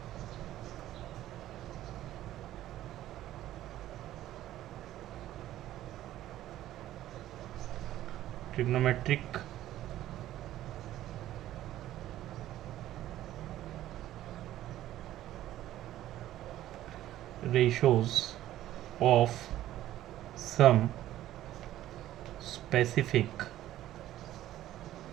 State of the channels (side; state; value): left; quieter; 13.6 dB